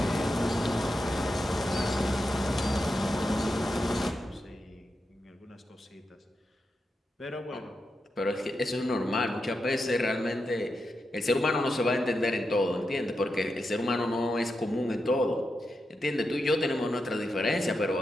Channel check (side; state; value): both; normal; correlation 0.87